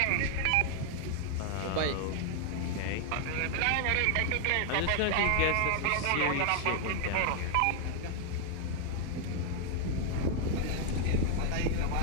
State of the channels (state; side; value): different; both; correlation 0.00